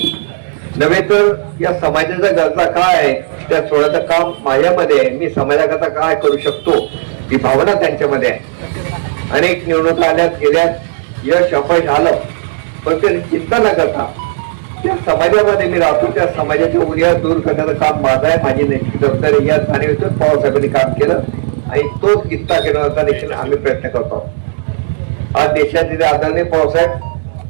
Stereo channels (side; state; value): left; silent; digital silence